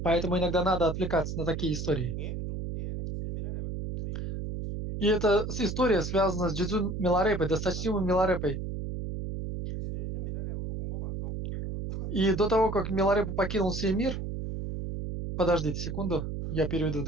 Поэтому иногда надо отвлекаться на такие истории. И эта история связана с Джидзун Миларепой, досточтимым Миларепой. И до того, как Миларепа покинул сей мир, подождите секунду, я переведу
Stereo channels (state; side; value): noise; right; hum, 4 dB below the sound